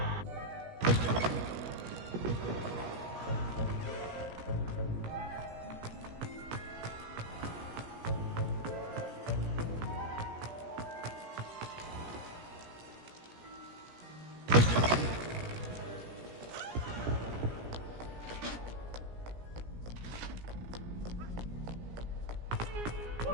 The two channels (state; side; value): late; left; 17 ms